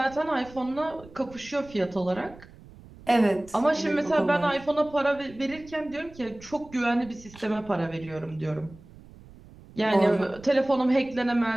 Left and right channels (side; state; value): right; noise; rumble, 21 dB below the sound